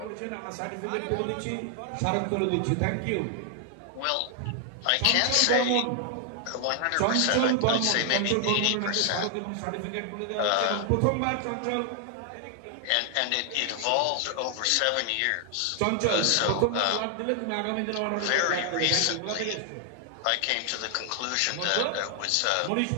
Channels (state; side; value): different; both; correlation 0.00